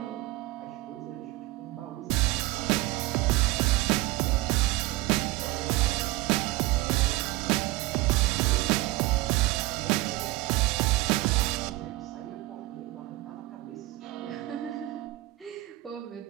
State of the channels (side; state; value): left; quieter; 19.2 dB